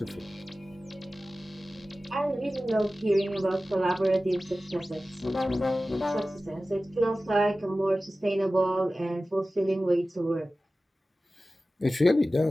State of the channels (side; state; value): both; normal; correlation 0.96